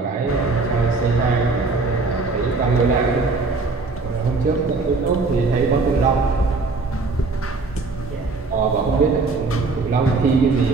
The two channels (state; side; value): quieter; left; 3.8 dB